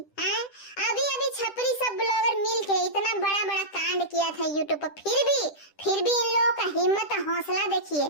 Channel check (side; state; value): right; late; 10 ms